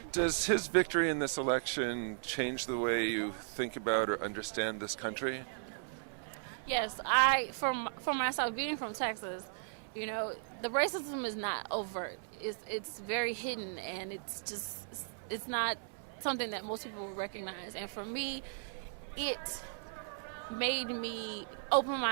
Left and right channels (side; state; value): left; silent; 54 dB below the other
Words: Does his victory in this election change the way you think about or understand this country? Yes, for myself, being from Texas, the racism is not overt. It's very hidden, and it's not something that most people would recognize. And for me, it made me open